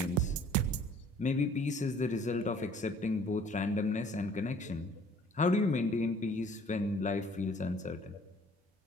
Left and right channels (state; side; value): normal; both; correlation 0.55